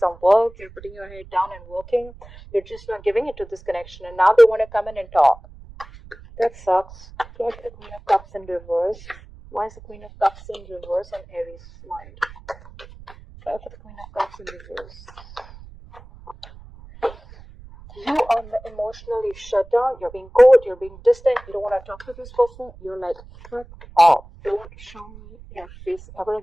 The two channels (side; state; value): right; noise; rumble, 19 dB below the sound